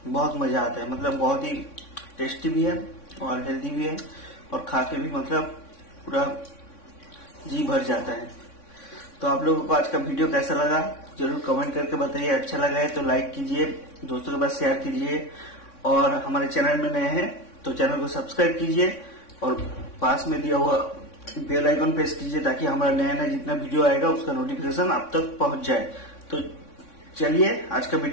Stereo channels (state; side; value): late; right; 3.6 ms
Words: बहुत मजा आता है, मतलब बहुत ही टेस्टी भी है और हेल्दी भी है और खा के भी मतलब पूरा जी भर जाता है। तो आप लोगों को आज का वीडियो कैसा लगा जरूर कमेंट करके बताइए। अच्छा लगा है तो लाइक कीजिए, दोस्तों के पास शेयर कीजिए और हमारे चैनल में नए हैं तो चैनल को सब्सक्राइब कीजिए और पास में दिया हुआ बेल आइकन प्रेस कीजिए ताकि हमारा नया नया जितना वीडियो आएगा उसका नोटिफिकेशन आप तक पहुंच जाए। तो चलिए आज का